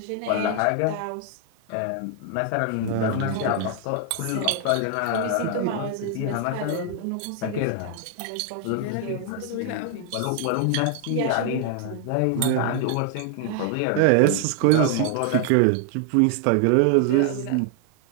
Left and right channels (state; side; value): different; both; correlation 0.00